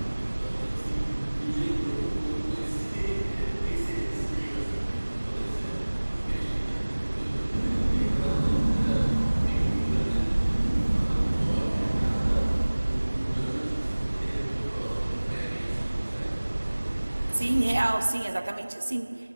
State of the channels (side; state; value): both; inverted; correlation -1.00